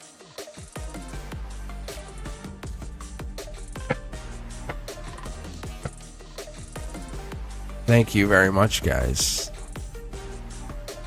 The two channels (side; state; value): both; identical; correlation 1.00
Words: thank you very much, guys.